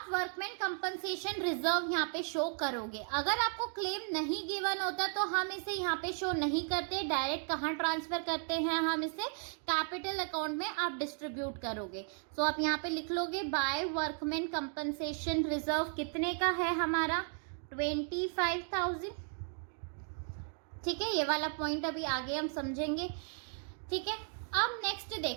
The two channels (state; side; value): silent; left; 54 dB below the other